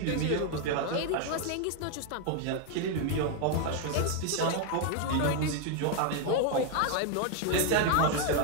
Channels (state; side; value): different; both; correlation 0.01